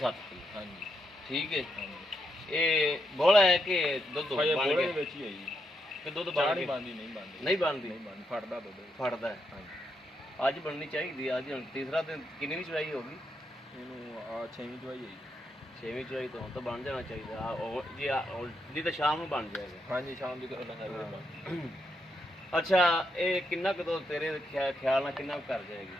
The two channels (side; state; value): both; normal; correlation 0.81